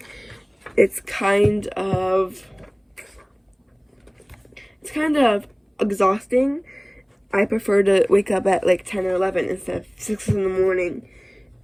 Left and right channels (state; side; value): identical; both; correlation 1.00